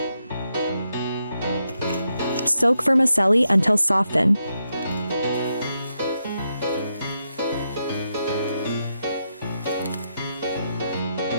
Soak vermicelli until soften.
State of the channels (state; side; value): inverted; both; correlation -0.83